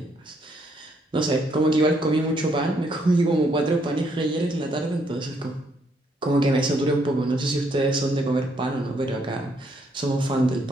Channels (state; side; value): normal; both; correlation 0.72